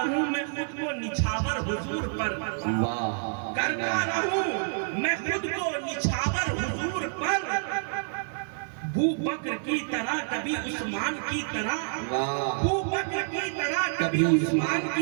میں خود کو نچھاور حضور پر، کرتا رہوں میں خود کو نچھاور حضور پر، ابو بکر کی طرح کبھی عثمان کی طرح، ابو بکر کی طرح کبھی عثمان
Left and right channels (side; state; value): left; silent; digital silence